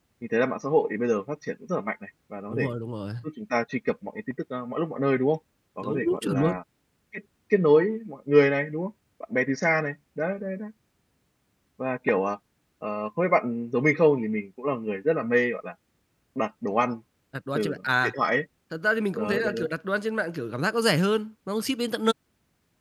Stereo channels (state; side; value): identical; both; correlation 1.00